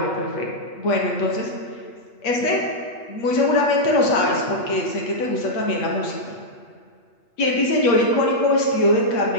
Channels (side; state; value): right; late; 8.4 ms